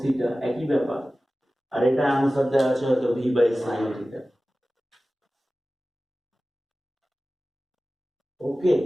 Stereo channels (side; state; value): both; normal; correlation 0.96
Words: থিটা, একই ব্যাপার। আর এটা আনসার দেওয়া আছে হয়তো ভি বাই sin থিটা। ওকে,